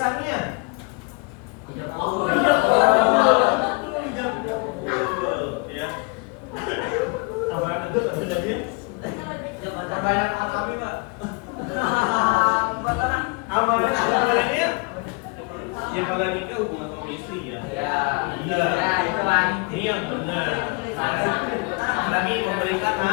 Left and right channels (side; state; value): right; quieter; 30.9 dB